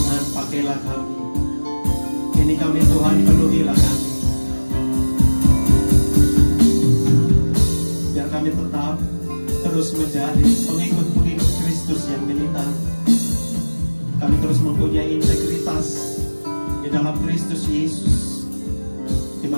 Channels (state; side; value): inverted; both; correlation -1.00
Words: pakailah kami. Ini kami Tuhan, penuhilah kami. Biar kami tetap terus menjadi pengikut-pengikut Kristus yang militan. Kami terus mempunyai integritas di dalam Kristus Yesus.